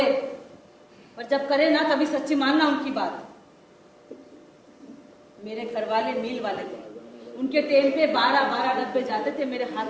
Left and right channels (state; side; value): identical; both; correlation 1.00